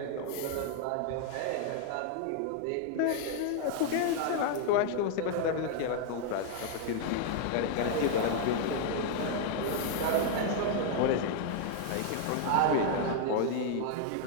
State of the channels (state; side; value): different; both; correlation 0.00